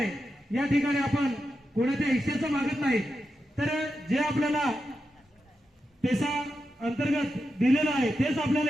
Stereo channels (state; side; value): normal; both; correlation 0.88